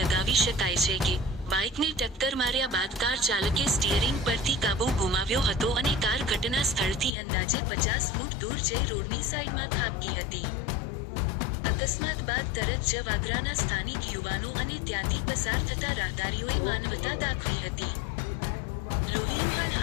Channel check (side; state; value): right; drops out; at 7.1 s